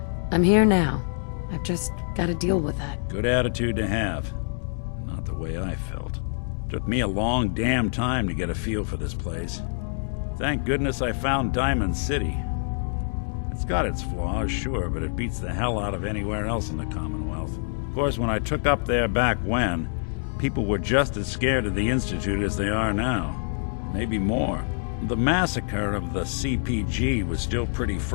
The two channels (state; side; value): silent; right; digital silence